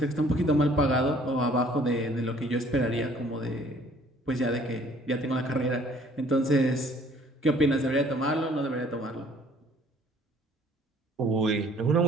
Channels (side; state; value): both; normal; correlation 0.57